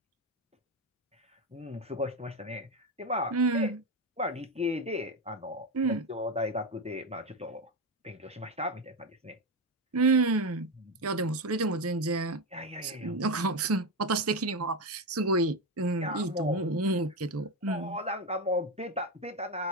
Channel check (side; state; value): both; normal; correlation 0.13